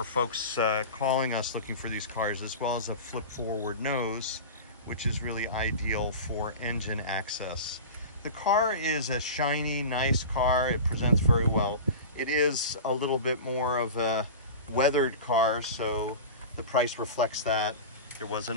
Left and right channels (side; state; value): both; inverted; correlation -0.31